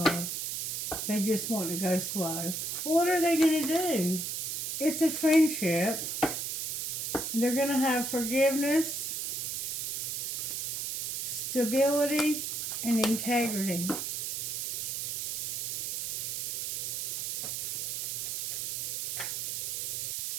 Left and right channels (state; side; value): noise; right; hiss, 2 dB below the sound